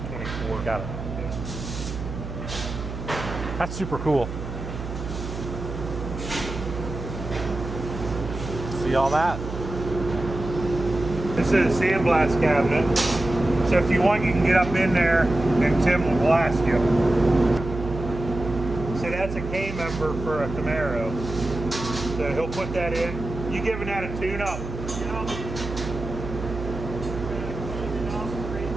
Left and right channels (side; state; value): right; noise; hum, 7 dB below the sound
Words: 24. Got it. That's super cool. See all that? This is a sandblast cabinet. So if you want, you can get up in there and Tim will blast you. So that's a K member for a Camaro. So he'll put that in. You giving that a tune up?